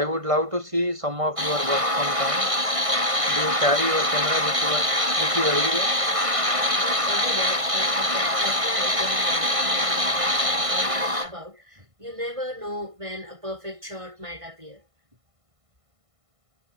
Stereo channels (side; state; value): left; late; 1.5 ms